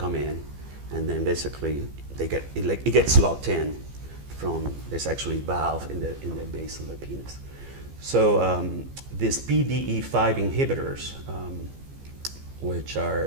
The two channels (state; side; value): late; left; 15 ms